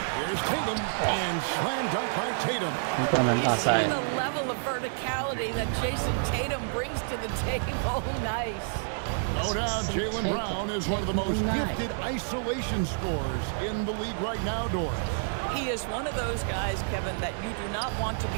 Here's Tatum, and slam dunk by Tatum. You see the level of verticality that Jason Tatum brings to the table. Nice. No doubt, Jaylen Brown is one of the most gifted isolation scorers in the league right now, Doris. He is one of those guys, Kevin, that you do not want to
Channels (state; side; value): silent; left; digital silence